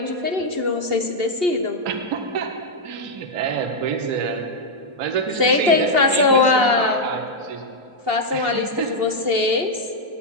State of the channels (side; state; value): left; late; 2.8 ms